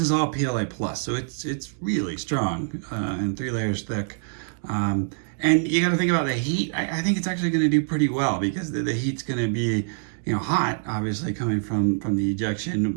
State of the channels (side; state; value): left; silent; digital silence